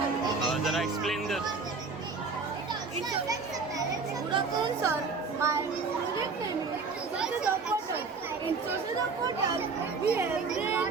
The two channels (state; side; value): quieter; left; 4.5 dB